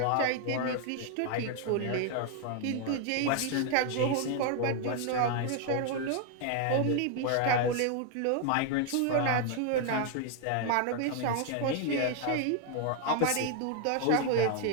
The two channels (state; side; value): different; both; correlation 0.00